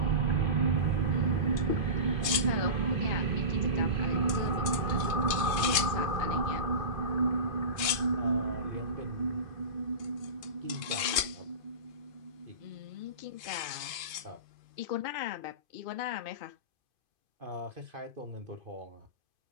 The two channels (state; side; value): late; left; 2.5 ms